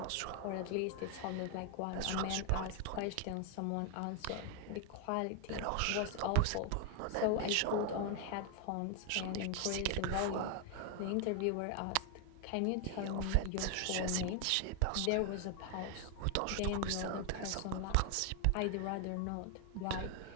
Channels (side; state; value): both; different; correlation 0.00